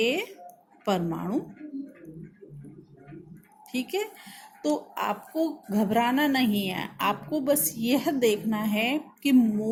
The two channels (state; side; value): identical; both; correlation 1.00